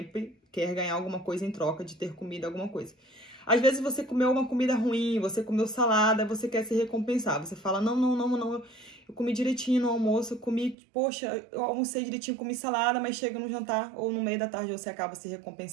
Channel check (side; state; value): left; drops out; at 10.8 s